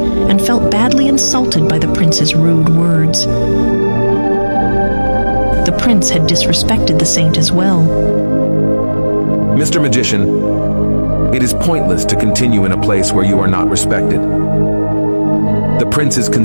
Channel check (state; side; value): inverted; both; correlation -1.00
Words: felt badly insulted by the prince's rude words. The prince had disrespected the saint as well. Mr. Magician, it is pointless to continue in a place where you are not respected. The prince is